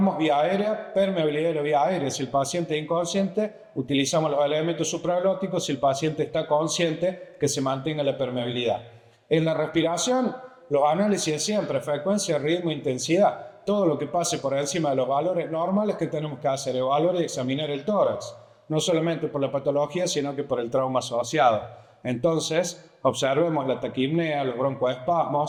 vía aérea, permeabilidad de la vía aérea. Si el paciente es inconsciente, utilizamos los elementos supraglóticos. Si el paciente está consciente, que se mantenga la permeabilidad. En la respiración, los análisis de siempre, frecuencia, ritmo, intensidad. Todo lo que pase por encima de los valores normales que tenemos que hacer, evaluar y examinar el tórax. No solamente por la patología, sino que por el trauma asociado. Entonces, observemos la taquipnea, los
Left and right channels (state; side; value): identical; both; correlation 1.00